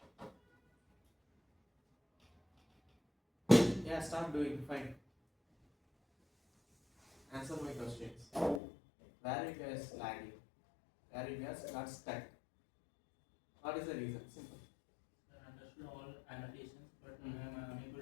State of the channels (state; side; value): drops out; right; at 8.6 s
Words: Yeah, start doing. Fine. Answer my questions. Where you guys lagging? Where you guys got stuck? What is the reason? Simple. I understood all annotations, but I am